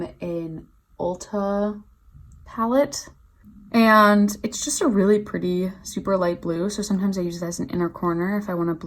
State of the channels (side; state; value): both; identical; correlation 1.00